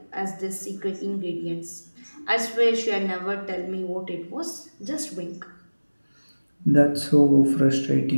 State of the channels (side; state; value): both; inverted; correlation -1.00